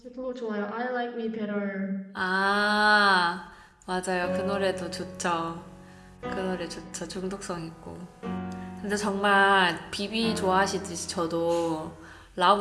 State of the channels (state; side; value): identical; both; correlation 1.00